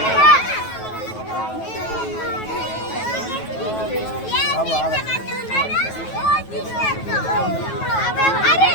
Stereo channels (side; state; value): right; late; 9.3 ms